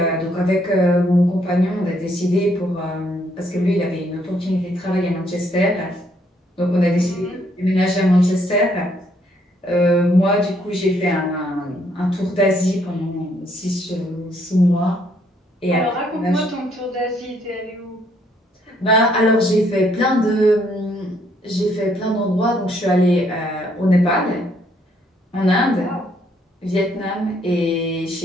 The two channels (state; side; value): normal; both; correlation 0.69